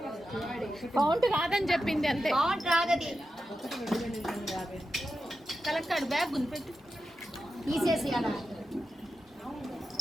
కౌంట్ కాదని చెప్పింది అంతే కౌంట్ రాదది కలెక్టర్ బ్యాగ్ గుంపెట్టు తీసేసి అలా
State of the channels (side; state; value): both; normal; correlation 0.91